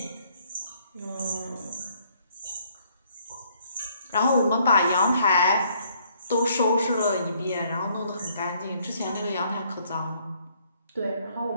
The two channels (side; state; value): both; inverted; correlation -0.66